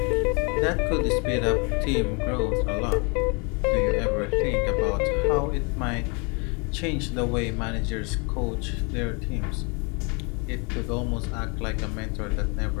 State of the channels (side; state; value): right; quieter; 32.6 dB